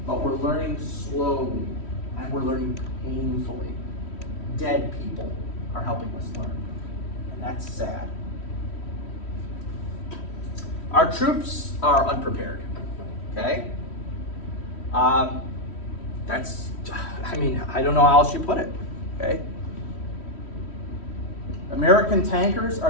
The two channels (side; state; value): right; late; 3.1 ms